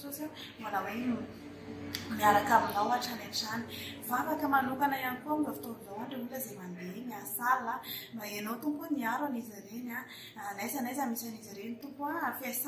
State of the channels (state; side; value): identical; both; correlation 1.00